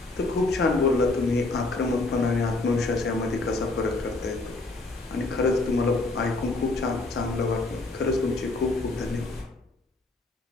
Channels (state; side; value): quieter; right; 3.1 dB